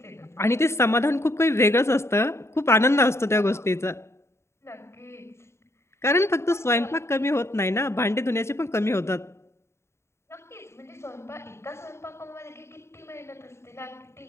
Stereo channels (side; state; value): right; late; 0.13 ms